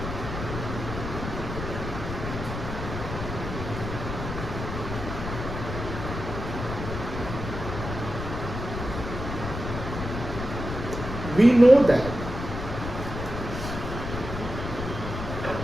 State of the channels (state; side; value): noise; left; rumble, 6 dB below the sound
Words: We know that